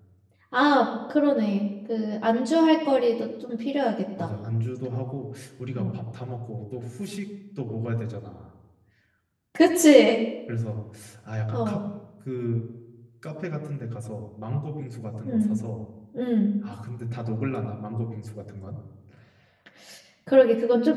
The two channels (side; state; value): both; identical; correlation 1.00